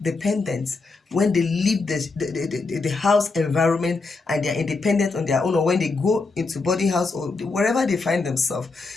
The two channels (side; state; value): right; quieter; 3.9 dB